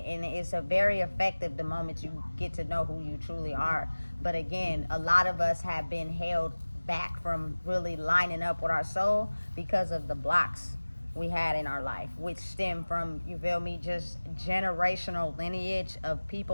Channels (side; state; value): both; inverted; correlation -1.00